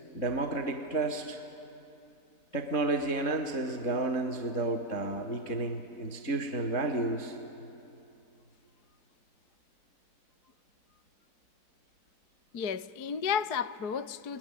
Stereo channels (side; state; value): right; late; 3.7 ms